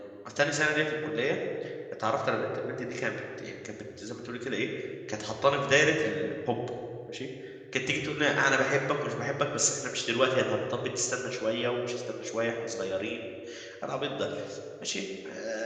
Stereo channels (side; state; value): both; identical; correlation 1.00